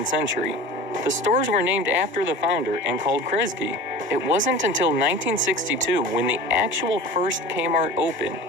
century. The stores were named after the founder and called Kresge. It wasn't until 1962 when the actual first Kmart opened.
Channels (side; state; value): both; normal; correlation 0.37